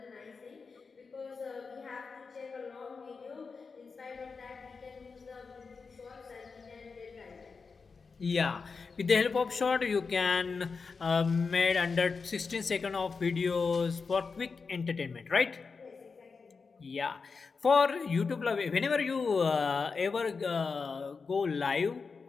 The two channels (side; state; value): right; quieter; 4.9 dB